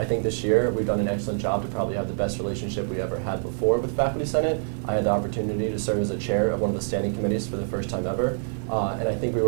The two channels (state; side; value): silent; left; 61 dB below the other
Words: think this year we've done an excellent job to probably have the best relationship we ever had before with faculty senate. I had the opportunity to serve as a chair of one of the standing committees for the first time ever, and I think we